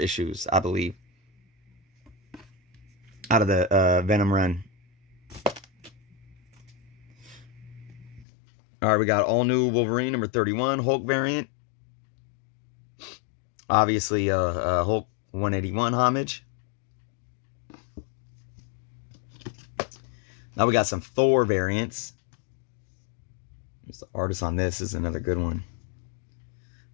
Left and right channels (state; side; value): drops out; right; at 8.2 s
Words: I believe. out of the Venom run. All right, we got all new Wolverine number 31 Hulk variant. Obviously, Hulk 181 homage. Now we got some Thor variants. There's the artist on this. This is another good one.